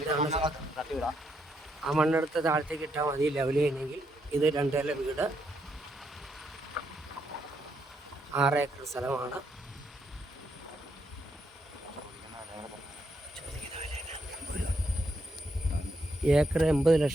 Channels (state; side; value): normal; both; correlation 0.77